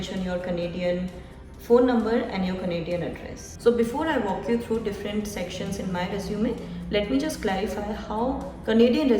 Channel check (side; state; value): both; identical; correlation 1.00